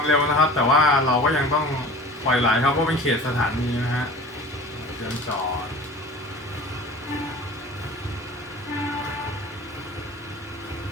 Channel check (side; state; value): both; normal; correlation 0.40